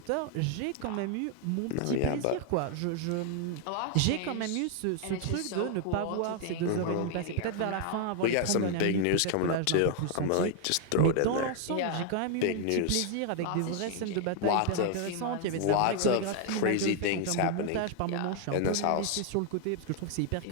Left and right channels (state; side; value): different; both; correlation 0.00